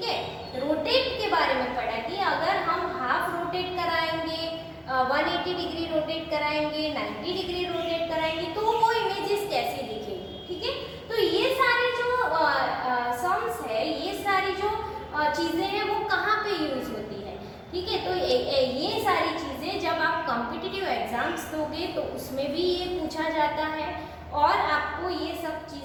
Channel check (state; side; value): identical; both; correlation 1.00